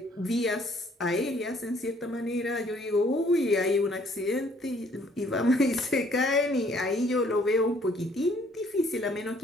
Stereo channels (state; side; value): normal; both; correlation 0.62